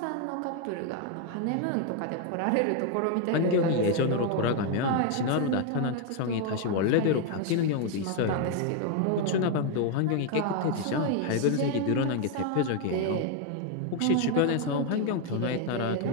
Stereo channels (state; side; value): different; both; correlation 0.01